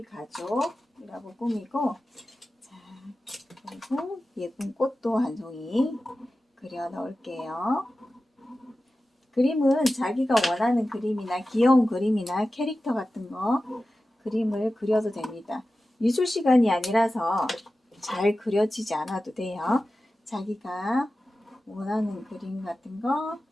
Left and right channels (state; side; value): normal; both; correlation 0.94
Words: 가족이라고 꾸미고, 자, 그리고 예쁜 꽃도 한 송이 그려 넣을게요. 그림은 자기가 원하는 그림이나 귀여운 그림이나 캐릭터 같은 거 그림을 그려도 됩니다. 미술 시간이 아니라서 잘 그려지지 않아도 돼요. 자기가 원하는 그림 같은 거